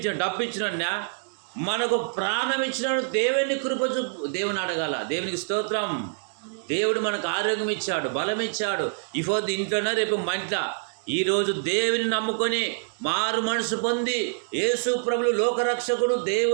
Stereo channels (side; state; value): left; silent; digital silence